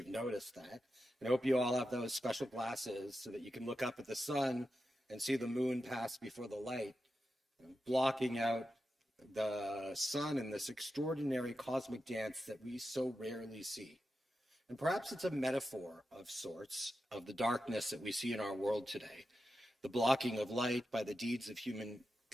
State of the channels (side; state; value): both; normal; correlation 0.90